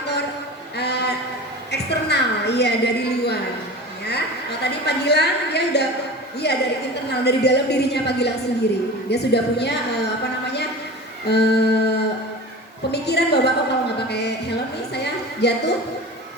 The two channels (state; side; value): normal; both; correlation 0.34